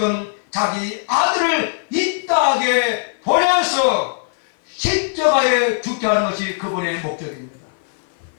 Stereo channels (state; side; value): silent; right; 56 dB below the other